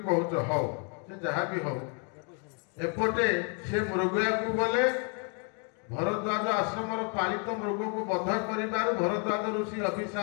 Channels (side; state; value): right; quieter; 37.3 dB